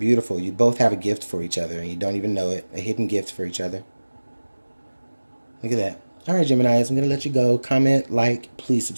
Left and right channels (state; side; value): inverted; both; correlation -1.00